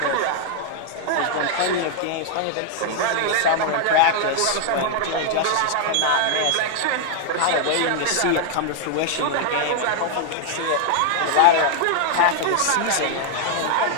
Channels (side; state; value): both; different; correlation 0.00